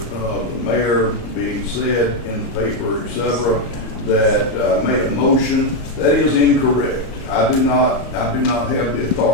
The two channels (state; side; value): late; right; 34 ms